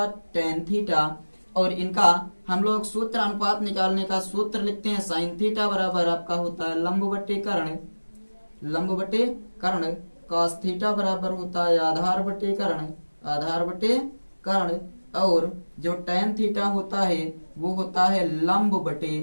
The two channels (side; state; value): both; inverted; correlation -1.00